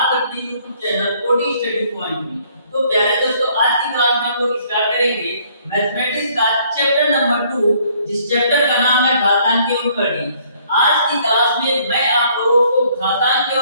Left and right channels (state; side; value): inverted; both; correlation -0.63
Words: अपने YouTube channel OD study point में। तो प्यारे दोस्तों, आज की क्लास में हम लोग स्टार्ट करेंगे मैथमेटिक्स का चैप्टर नंबर 2, जिस चैप्टर का नाम है घातांक एवं कड़ी। आज की क्लास में मैं आप लोगों को घातांक